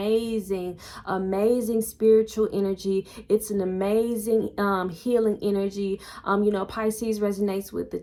spiritual energy. It's an amazing healing energy. You know, Pisces resonates with the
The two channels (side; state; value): both; identical; correlation 1.00